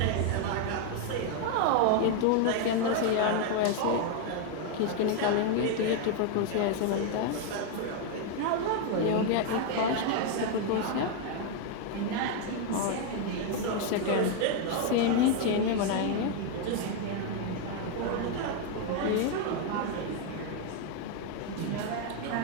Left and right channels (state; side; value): different; both; correlation 0.01